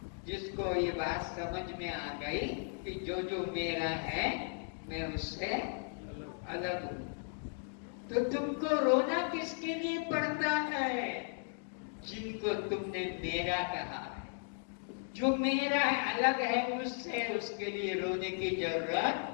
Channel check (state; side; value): silent; right; 54 dB below the other